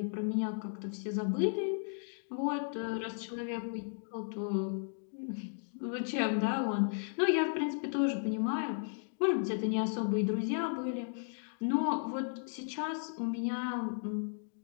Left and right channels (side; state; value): right; silent; digital silence